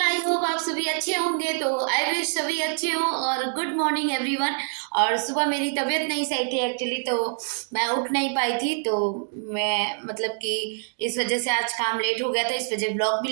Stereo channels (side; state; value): left; silent; 62 dB below the other